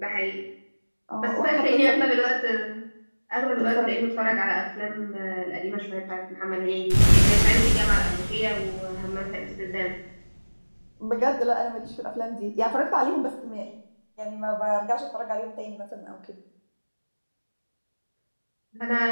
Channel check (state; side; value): inverted; both; correlation -1.00